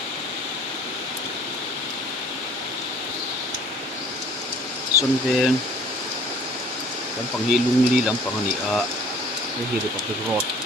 xuân về lắm bằng hi lung li lắm bằng này cái hi được cái rod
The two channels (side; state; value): both; normal; correlation 0.52